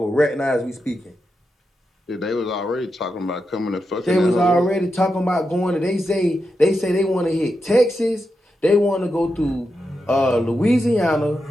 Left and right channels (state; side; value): normal; both; correlation 0.87